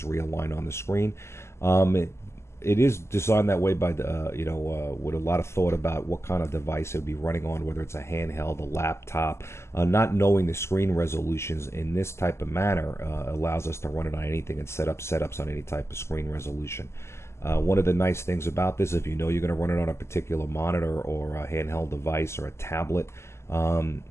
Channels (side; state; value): right; late; 0.13 ms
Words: realign on the screen. It is designed that way by with a lot of thought about what kind of device it would be running on, whether it's a handheld, a laptop. Not knowing the screen resolutions in this type of manner allows us to run it on anything and set up setups on any type of screen resolution. One of the nice things about this, if you know you're going to run it on a particular monitor or a handheld device or a tablet,